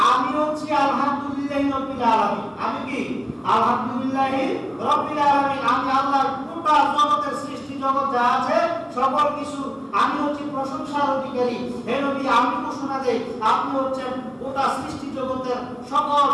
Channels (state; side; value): identical; both; correlation 1.00